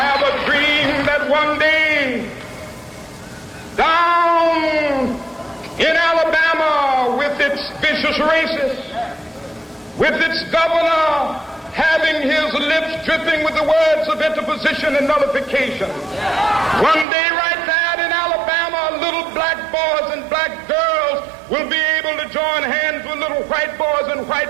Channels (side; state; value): left; drops out; at 17.1 s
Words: a dream that one day races, with its governor having his lips dripping with the words of interposition and nullification. One day right now in Alabama, little black boys and black girls will be able to join hands with little white boys and